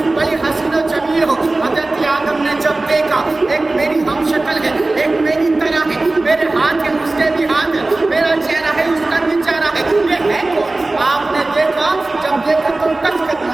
بڑی حسین و جمیل ہو۔ حضرت آدم نے جب دیکھا ایک میری ہم شکل ہے، ایک میری طرح ہے، میرے ہاتھ ہے اس کے بھی ہاتھ ہے، میرا چہرہ ہے اس کا بھی چہرہ ہے، یہ ہے کون؟ آپ نے دیکھا، جب دیکھا تو ٹچ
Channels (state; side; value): quieter; left; 3.0 dB